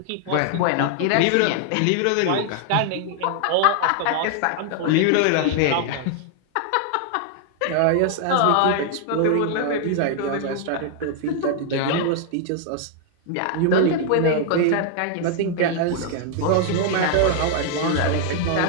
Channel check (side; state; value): both; different; correlation 0.00